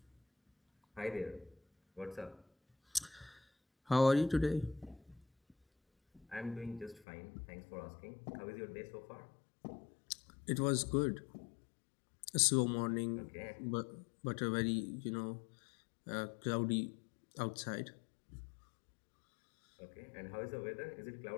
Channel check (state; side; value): drops out; right; at 7.1 s